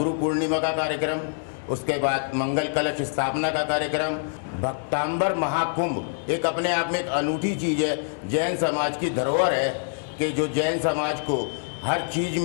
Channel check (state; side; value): silent; right; digital silence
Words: पूर्णिमा का कार्यक्रम, उसके बाद मंगल कलश स्थापना का कार्यक्रम, भक्तांबर महाकुंभ एक अपने आप में एक अनूठी चीज़ है, जैन समाज की धरोहर है कि जो जैन समाज को हर चीज़